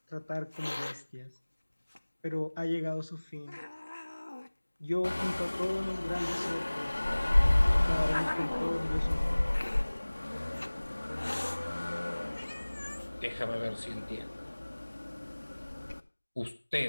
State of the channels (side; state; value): both; inverted; correlation -1.00